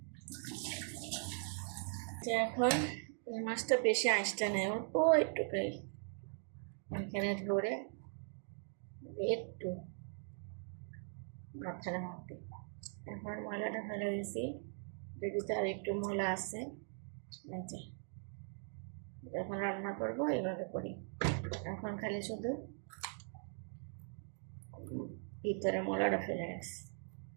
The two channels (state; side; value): silent; left; 51 dB below the other